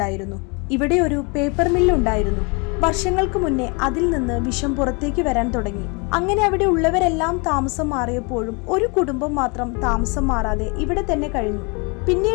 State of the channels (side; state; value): right; quieter; 31.5 dB